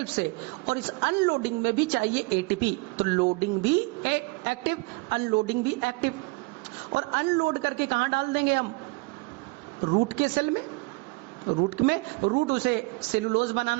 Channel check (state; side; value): quieter; left; 26.4 dB